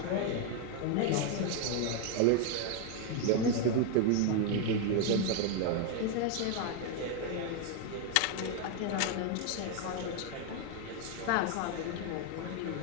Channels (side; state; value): both; different; correlation 0.01